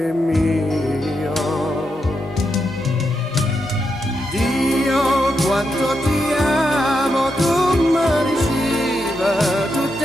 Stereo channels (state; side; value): normal; both; correlation 0.84